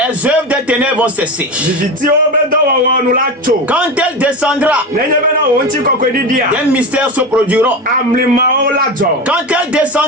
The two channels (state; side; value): normal; both; correlation 0.23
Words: œuvres des ténèbres vont cesser. Quand elle descendra, des mystères se produiront. Quand elle